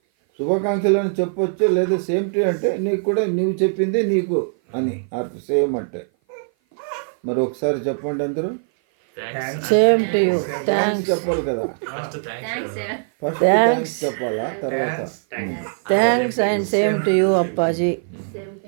శుభాకాంక్షలు అని చెప్పొచ్చు, లేదా సేమ్ టు అంటే నీకు కూడా నువ్వు చెప్పింది నీకు అని అర్థం. సేమ్ అంటే మరి ఒకసారి చెప్పండి అందరూ. Same to you. థ్యాంక్స్ చెప్పాలి కదా, ఫస్ట్ థ్యాంక్స్ చెప్పాలా, తర్వాత thanks and same to you Appaji.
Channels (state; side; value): silent; left; 56 dB below the other